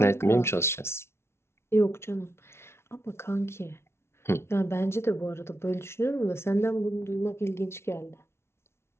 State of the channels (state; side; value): late; right; 0.12 ms